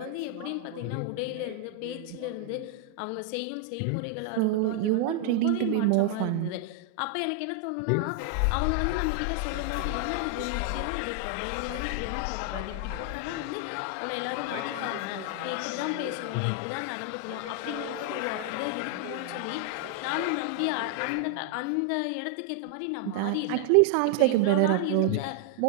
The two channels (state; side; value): different; both; correlation 0.00